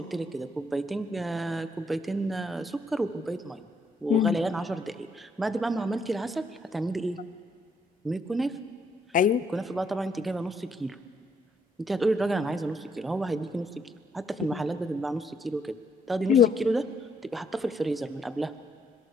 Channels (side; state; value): both; normal; correlation 0.72